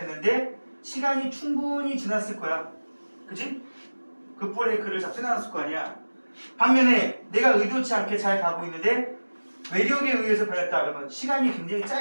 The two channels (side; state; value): both; inverted; correlation -1.00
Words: 시간이 충분히 지났을 거야. 그지? 그 브레이크를 잡지 않았을 거 아니야. 반면에 내가 의도치 않게 잘 가고 있는데 외력에 의해서 변했다 그러면 시간이 굉장히